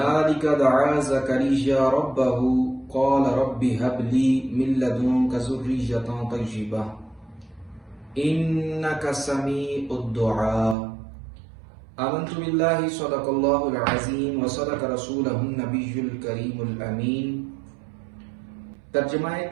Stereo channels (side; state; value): left; drops out; at 10.8 s